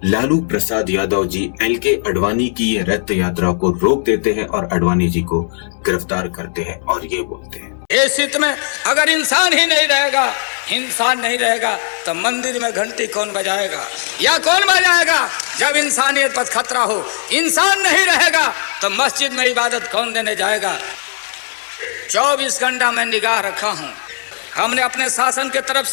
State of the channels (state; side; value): silent; right; digital silence